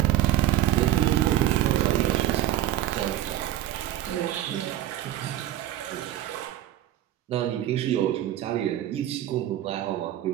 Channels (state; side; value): quieter; left; 12.9 dB